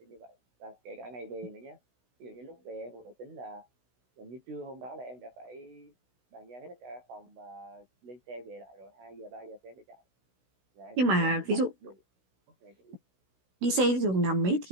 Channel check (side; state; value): left; late; 16 ms